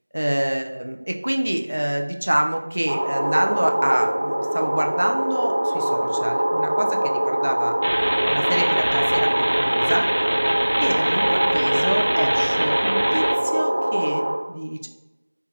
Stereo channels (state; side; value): inverted; both; correlation -1.00